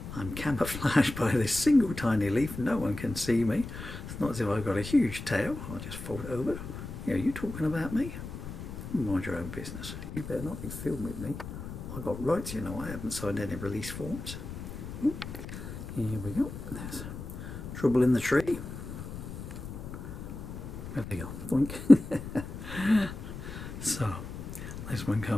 I'm camouflaged by this single tiny leaf. No one can see me. It's not as if I've got a huge tail. I'll just fold it over. Yeah, are you talking about me? Mind your own business. You better not be filming me. I've got rights, you know. I haven't signed any release forms. Here we go. There's trouble in the tree. There we go. Boink. So, this one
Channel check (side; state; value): left; noise; rumble, 9 dB below the sound